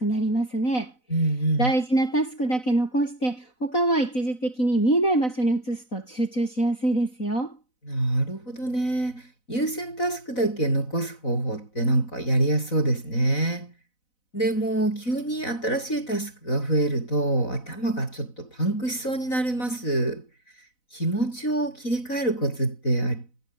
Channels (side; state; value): right; late; 4.0 ms